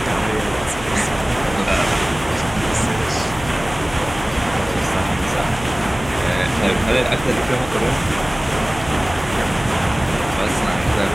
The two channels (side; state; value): left; noise; hum, 13 dB below the sound